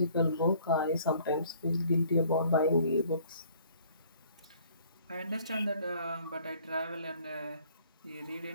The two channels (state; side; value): inverted; both; correlation -0.57